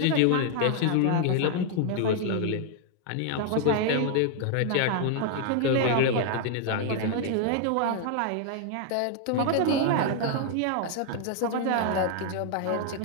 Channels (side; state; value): both; different; correlation 0.00